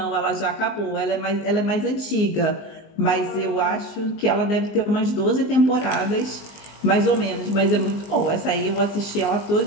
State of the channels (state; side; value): late; right; 19 ms